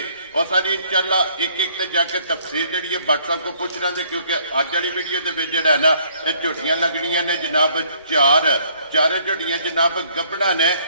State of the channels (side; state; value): both; inverted; correlation -0.62